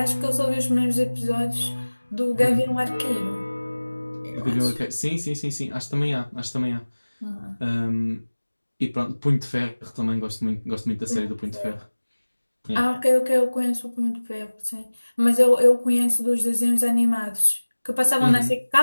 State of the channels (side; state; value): both; inverted; correlation -1.00